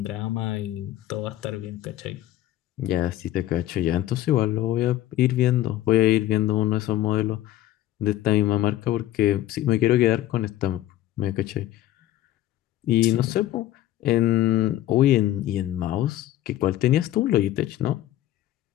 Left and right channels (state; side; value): quieter; right; 13.9 dB